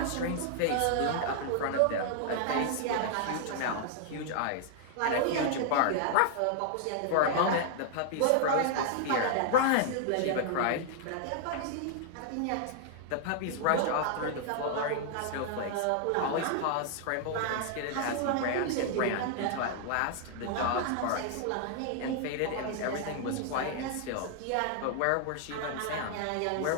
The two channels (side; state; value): both; different; correlation -0.01